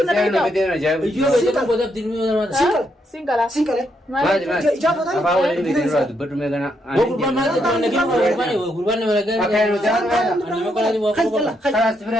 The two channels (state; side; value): normal; both; correlation 0.78